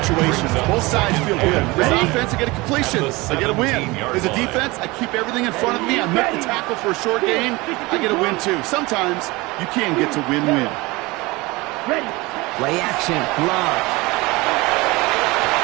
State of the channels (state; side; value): quieter; left; 22.7 dB